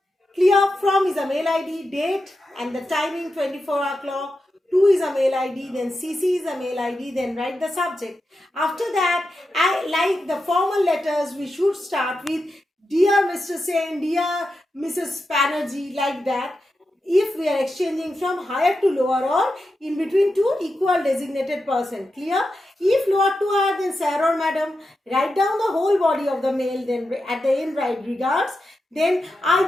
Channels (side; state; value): both; normal; correlation 0.89